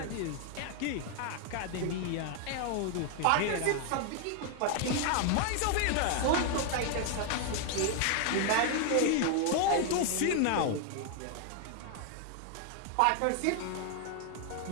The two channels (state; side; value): different; both; correlation 0.00